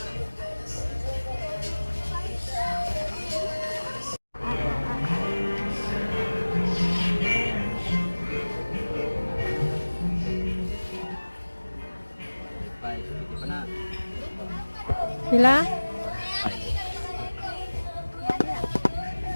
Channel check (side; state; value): both; inverted; correlation -1.00